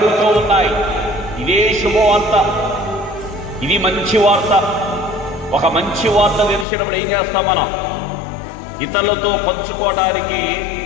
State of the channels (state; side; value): drops out; right; at 6.7 s